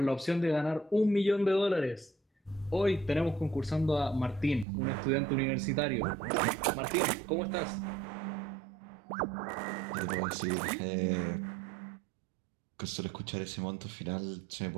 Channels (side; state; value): left; drops out; at 4.7 s